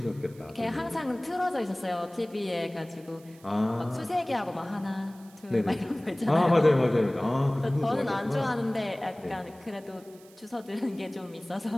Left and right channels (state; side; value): noise; right; hiss, 25 dB below the sound